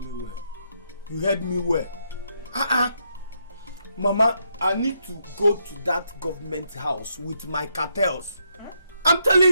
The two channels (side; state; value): both; inverted; correlation -0.77